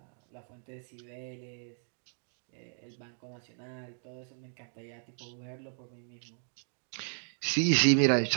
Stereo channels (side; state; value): left; silent; 55 dB below the other